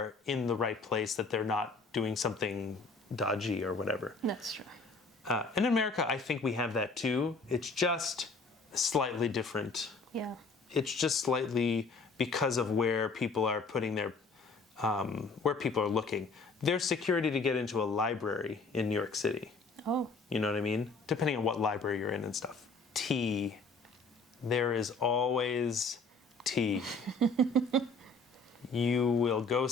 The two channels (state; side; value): quieter; right; 3.7 dB